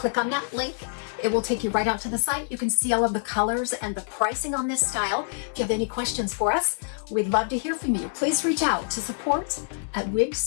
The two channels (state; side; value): silent; right; digital silence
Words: on that link, it will take you right out to the site. You can see all of the colors and the pricing on this style. If you have any questions for us, we'd love to hear from you. Please reach out to